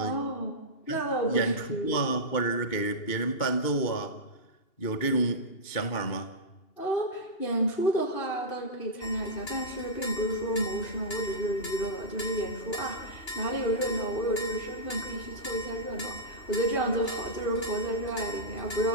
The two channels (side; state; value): right; late; 2.8 ms